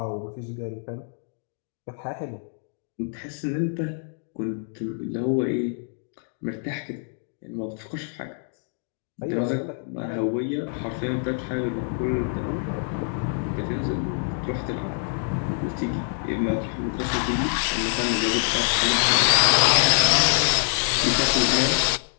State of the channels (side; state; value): right; silent; 61 dB below the other